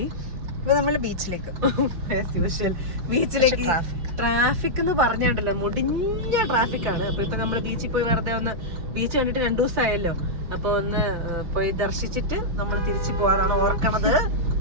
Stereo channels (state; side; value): late; left; 5.9 ms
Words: ഇപ്പൊ നമ്മള് ബീച്ചിലേക്ക്. ബീച്ചിലേക്ക്. ട്രാഫിക് എന്ന് പറഞ്ഞിട്ടല്ലോ, മുടിഞ്ഞ ട്രാഫിക് ആണ്. അപ്പൊ ഇപ്പൊ നമ്മള് ബീച്ചിൽ പോയി വെറുതെ ഒന്ന് ബീച്ച് കണ്ടിട്ട് 2 ദിവസമായല്ലോ. അപ്പൊ ഒന്ന് പോയി ദർശിച്ചിട്ട് നമ്മൾ തിരിച്ചു പോകാനാണ് ഓർക്കണത്.